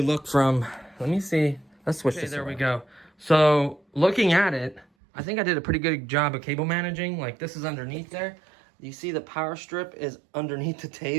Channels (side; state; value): left; drops out; at 4.9 s